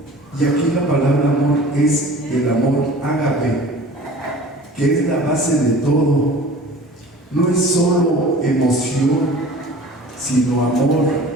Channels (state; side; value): normal; both; correlation 0.43